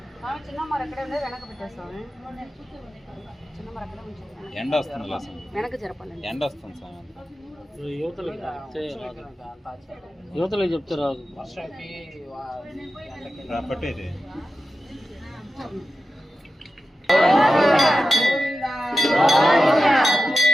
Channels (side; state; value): both; normal; correlation 0.93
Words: చిన్న మరి ఎక్కడే ఉండే వెనక పెట్టేస్తాము. చిన్న మరి అక్కడే ఉంచాలి. ఎండ వస్తుంది వెనక జరపాలండి. ఎండ వస్తుంది సార్. యువతలకు చెప్తే రాదు. పట్టేది